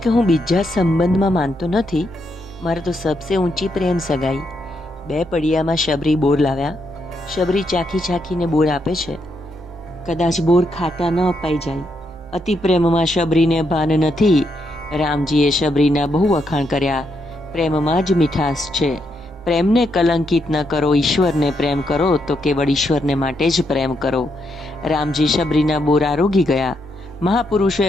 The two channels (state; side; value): normal; both; correlation 0.79